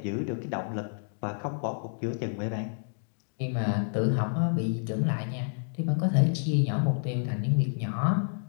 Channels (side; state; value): right; silent; digital silence